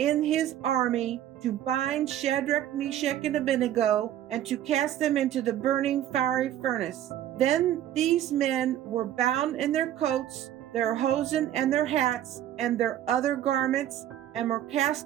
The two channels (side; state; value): left; quieter; 11.9 dB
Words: his army to bind Shadrach, Meshach, and Abednego, and to cast them into the burning fiery furnace. Then these men were bound in their coats, their hosen, and their hats, and their other garments, and were